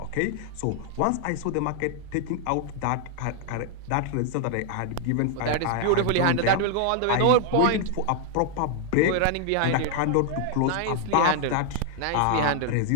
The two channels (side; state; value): both; different; correlation 0.00